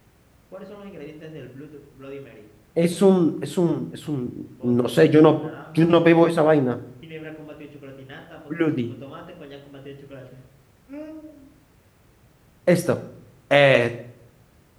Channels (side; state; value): both; identical; correlation 1.00